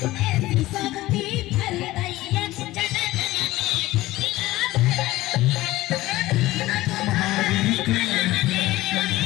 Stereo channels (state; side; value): quieter; right; 17.5 dB